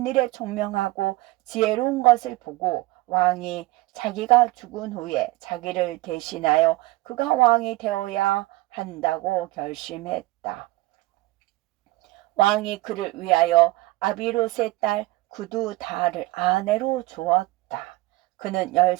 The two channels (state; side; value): quieter; left; 19.9 dB